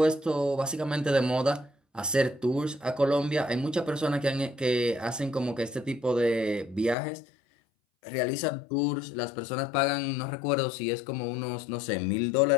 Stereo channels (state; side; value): drops out; right; at 7.0 s